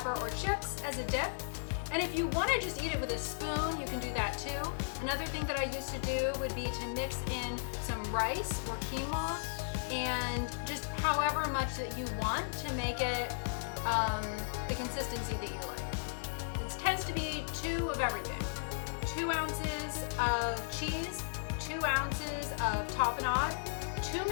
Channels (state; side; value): silent; right; digital silence